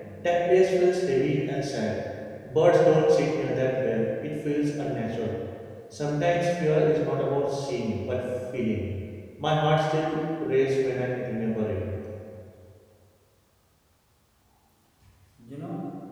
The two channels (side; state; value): both; identical; correlation 1.00